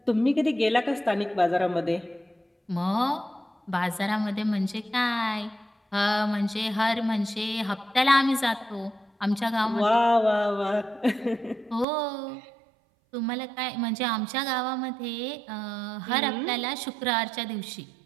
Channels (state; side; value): drops out; left; at 11.9 s